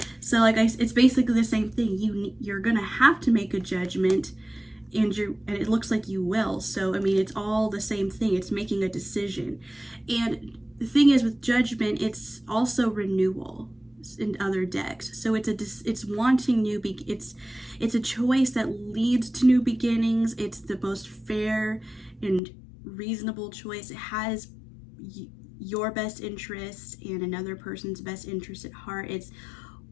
So like it's basically the same thing. You're gonna have to make a judgment, and it looks like you will. So I mean, it's all the same thing. It's making a decision. And the thing is, with Judgment, it's also renewal in other decks. So it's wanting it's a choice that leads to new beginnings. It's the most fair and reasonable choice. It has your best interest and another person's best interest at heart. It's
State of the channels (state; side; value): drops out; right; at 22.4 s